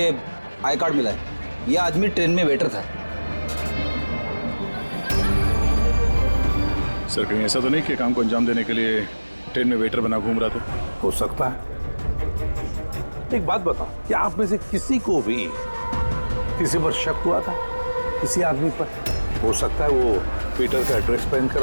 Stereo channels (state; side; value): inverted; both; correlation -1.00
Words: आई कार्ड मिला है। ये आदमी ट्रेन में वेटर था। सर कहीं ऐसा तो नहीं कि काम को अंजाम देने के लिए ट्रेन में वेटर बना घूम रहा था? हो सकता है। एक बात बताओ, क्या आप में से किसी को भी किसी पर शक हुआ था? किसी आदमी पर? हो सकता है वो पीटर का ड्रेस पहन कर